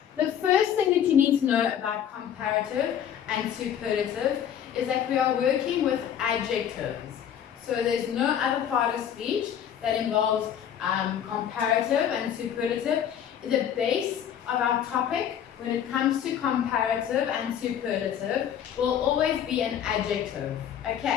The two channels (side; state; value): right; quieter; 9.3 dB